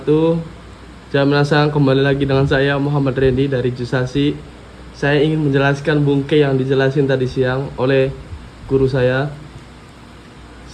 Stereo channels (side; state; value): both; identical; correlation 1.00